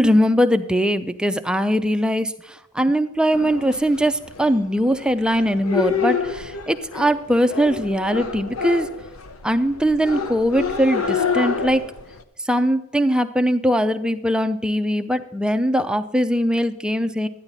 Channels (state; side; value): normal; both; correlation 0.81